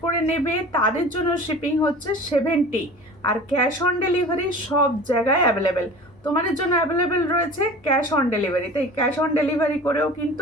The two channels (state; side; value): normal; both; correlation 0.40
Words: করে নেবে তাদের জন্য শিপিং হচ্ছে 70, আর ক্যাশ অন ডেলিভারি সব জায়গায় অ্যাভেলেবেল। তোমাদের জন্য অ্যাভেলেবেল রয়েছে ক্যাশ অন ডেলিভারি, তাই ক্যাশ অন ডেলিভারি করেও